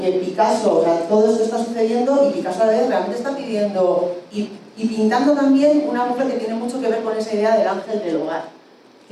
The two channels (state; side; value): identical; both; correlation 1.00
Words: que Picasso, o sea, todo esto está sucediendo y Picasso a la vez realmente está pidiendo y pintando también una mujer que tiene mucho que ver con esa idea del ángel del hogar,